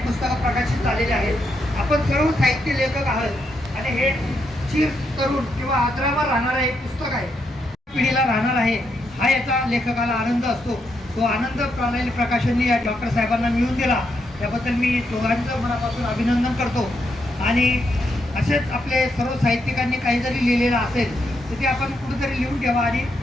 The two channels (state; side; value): normal; both; correlation 0.80